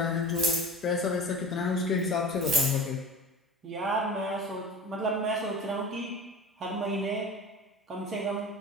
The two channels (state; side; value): normal; both; correlation 0.36